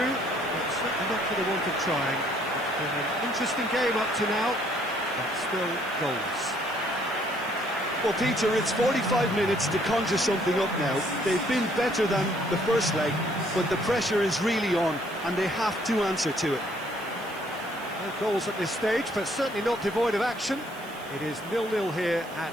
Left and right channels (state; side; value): noise; right; hiss, 21 dB below the sound